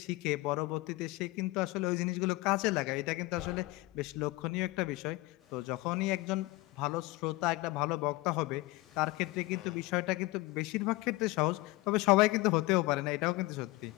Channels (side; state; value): right; quieter; 20.9 dB